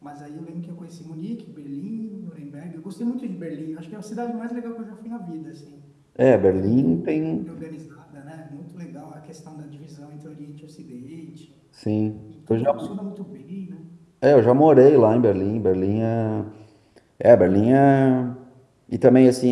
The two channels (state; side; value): identical; both; correlation 1.00